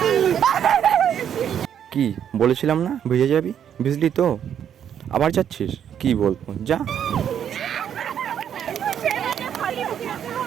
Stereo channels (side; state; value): left; quieter; 9.1 dB